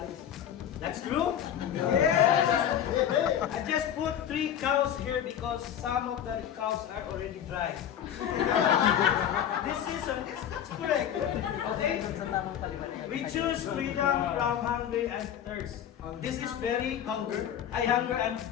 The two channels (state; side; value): quieter; right; 9.7 dB